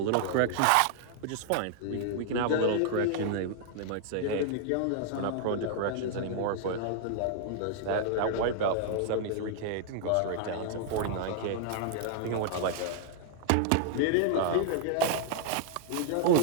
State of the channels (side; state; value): both; different; correlation 0.00